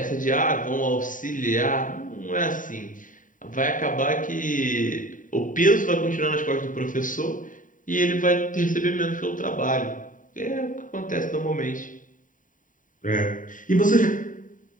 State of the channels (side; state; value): right; late; 0.38 ms